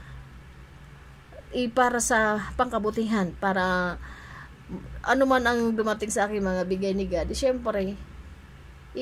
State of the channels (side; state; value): both; identical; correlation 1.00